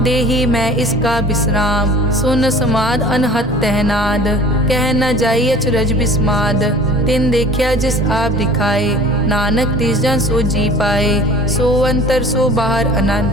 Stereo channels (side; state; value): both; normal; correlation 0.45